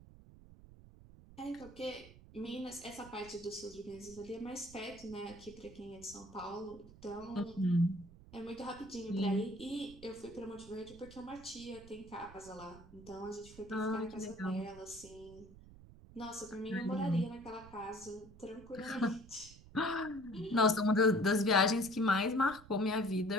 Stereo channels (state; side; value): noise; right; rumble, 19 dB below the sound